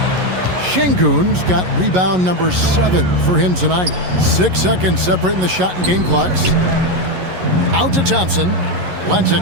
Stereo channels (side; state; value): left; late; 11 ms